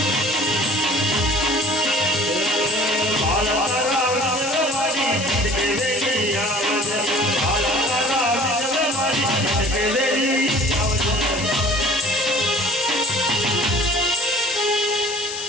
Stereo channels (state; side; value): noise; left; hiss, 7 dB below the sound